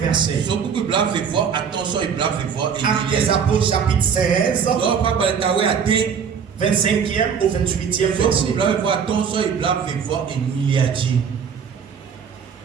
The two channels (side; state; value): left; quieter; 6.9 dB